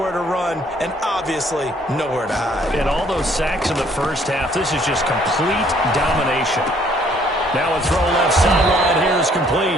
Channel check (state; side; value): normal; both; correlation 0.62